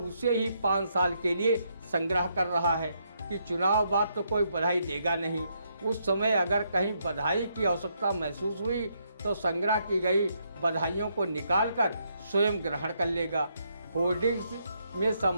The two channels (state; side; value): inverted; both; correlation -0.76